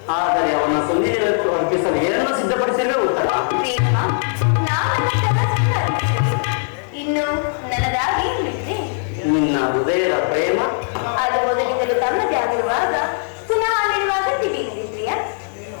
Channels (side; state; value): right; silent; 66 dB below the other